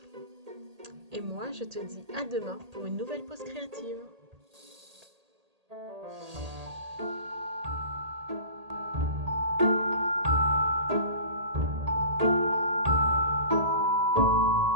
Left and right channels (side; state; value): left; late; 1.8 ms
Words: Et moi, je te dis à demain pour une nouvelle pause créative.